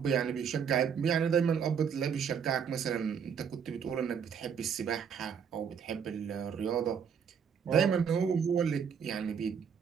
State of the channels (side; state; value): left; quieter; 7.2 dB